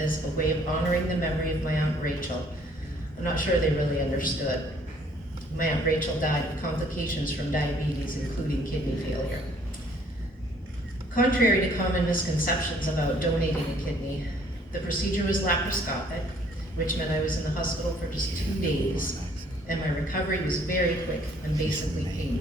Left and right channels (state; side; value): normal; both; correlation 0.61